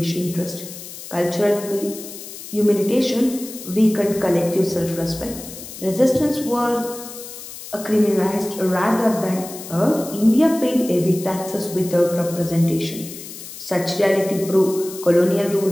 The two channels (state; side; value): noise; left; hiss, 13 dB below the sound